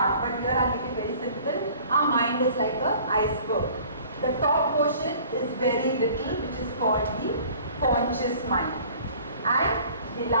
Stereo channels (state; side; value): inverted; both; correlation -0.50